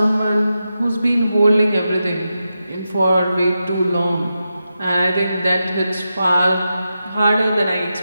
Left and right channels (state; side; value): inverted; both; correlation -0.89